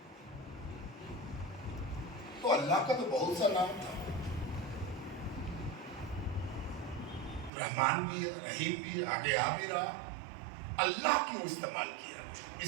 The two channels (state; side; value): drops out; left; at 7.5 s